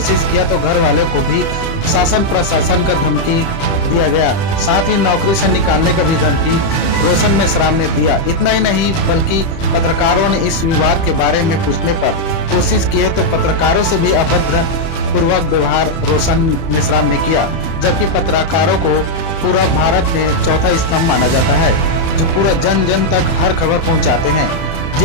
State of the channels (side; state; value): right; late; 31 ms